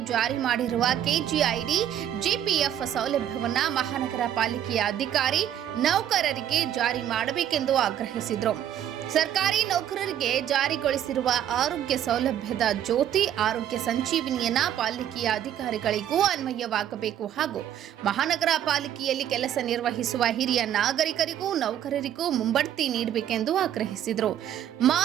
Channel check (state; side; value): quieter; left; 10.6 dB